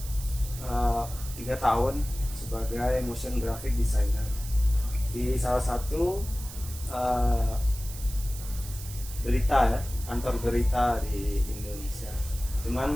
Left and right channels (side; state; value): right; noise; hiss, 13 dB below the sound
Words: 3 tahun sebagai motion graphic designer di salah satu berita ya, kantor berita di Indonesia.